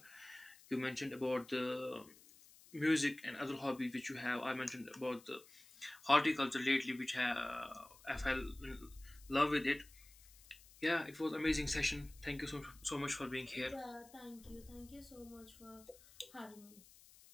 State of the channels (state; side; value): noise; left; hiss, 23 dB below the sound